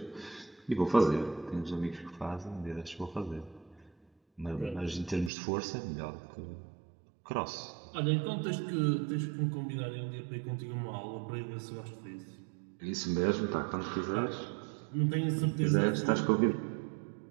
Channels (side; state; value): left; drops out; at 5.3 s